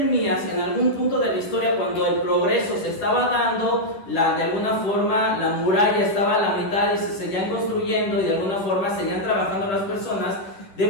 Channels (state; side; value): late; right; 10 ms